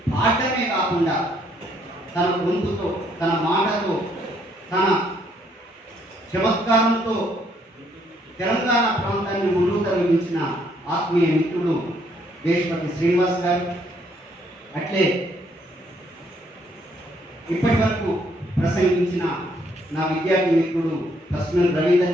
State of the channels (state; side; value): normal; both; correlation 0.69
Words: పాడటమే కాకుండా తన గొంతుతో, తన మాటతో, తన చమత్కారంతో తెలంగాణ ప్రాంతాన్ని ముందుకు తరలించిన ఆత్మీయ మిత్రుడు దేశపతి శ్రీనివాస్ గారు. అట్లే ఇప్పటి వరకు ప్రసంగించిన నా విద్యార్థి మిత్రుడు కస్మల్